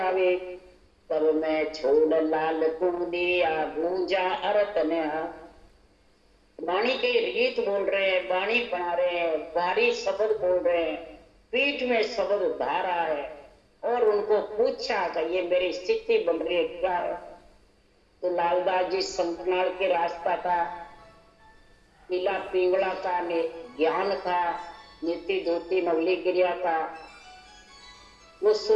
तब मैं छोड़ लाल तू दिया गूंजा अरत ने। वाणी के रीत बोल रहे हैं, वाणी बना रहे हैं, भारी शब्द बोल रहे हैं, पीठ में शब्द धारा है, और उनको पूछा कि ये मेरी स्थिति बन रही है क्या है। तो लालदास जी संकनाल के रास्ता था, पीला पिंगला का ज्ञान था, नीति धोती नवली गिरिया था, वो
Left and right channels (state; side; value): identical; both; correlation 1.00